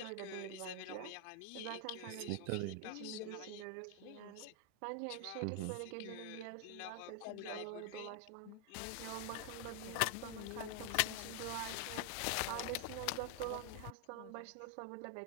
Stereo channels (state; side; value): different; both; correlation 0.00